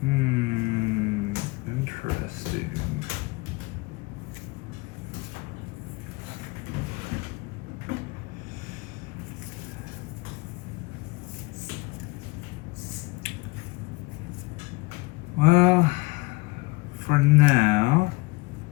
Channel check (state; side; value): quieter; right; 24.4 dB